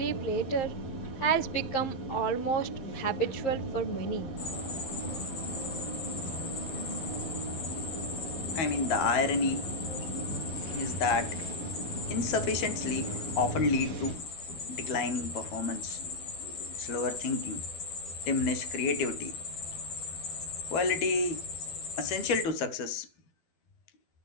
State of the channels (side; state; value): right; late; 12 ms